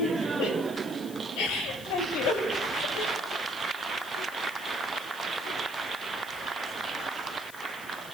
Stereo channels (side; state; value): left; noise; hiss, 15 dB below the sound